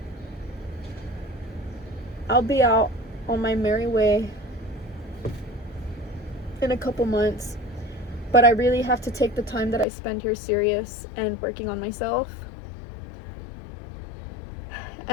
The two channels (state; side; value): drops out; right; at 9.9 s